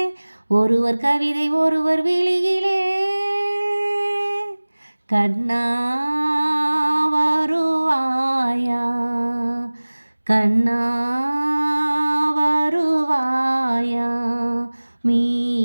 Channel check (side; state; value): both; inverted; correlation -1.00